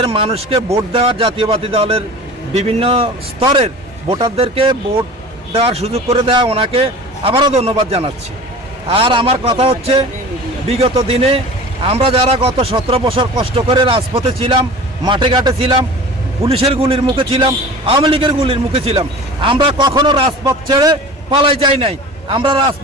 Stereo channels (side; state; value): both; normal; correlation 0.38